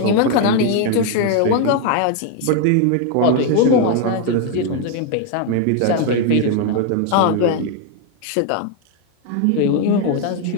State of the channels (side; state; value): both; different; correlation 0.01